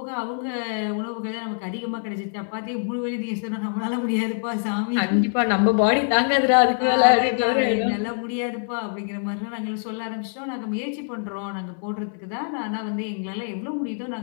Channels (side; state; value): right; silent; 62 dB below the other